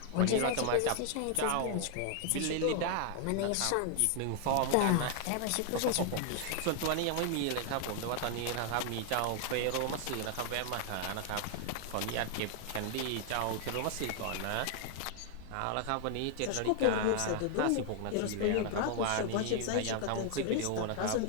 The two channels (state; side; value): different; both; correlation 0.00